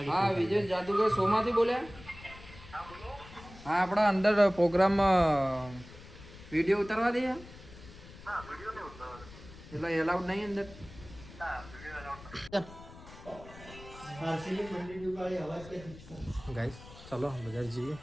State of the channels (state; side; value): noise; left; rumble, 18 dB below the sound